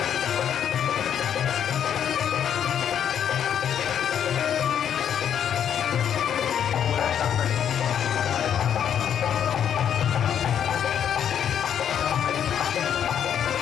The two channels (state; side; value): quieter; right; 9.0 dB